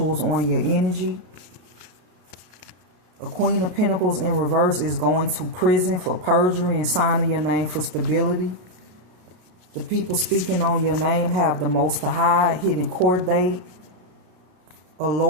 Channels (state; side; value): late; left; 33 ms